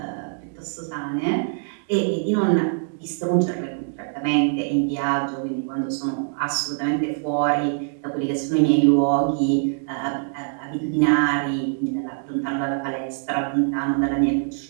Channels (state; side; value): silent; left; digital silence